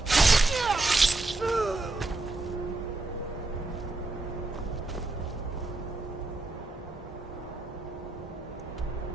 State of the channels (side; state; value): left; quieter; 3.1 dB